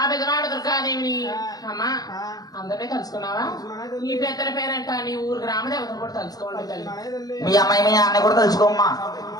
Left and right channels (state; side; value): late; right; 0.18 ms